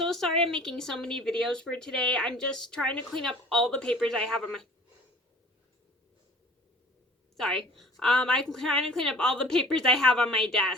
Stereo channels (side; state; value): both; normal; correlation 0.47